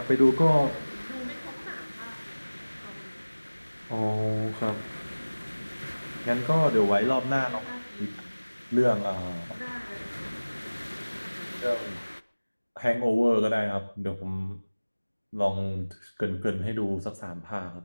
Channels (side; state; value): both; inverted; correlation -1.00